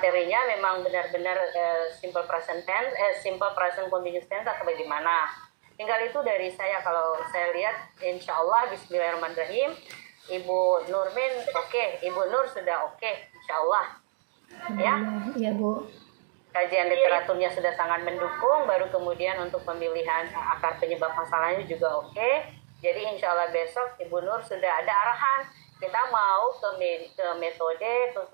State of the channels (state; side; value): silent; left; digital silence